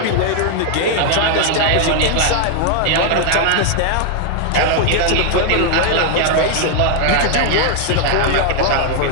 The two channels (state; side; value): different; both; correlation 0.00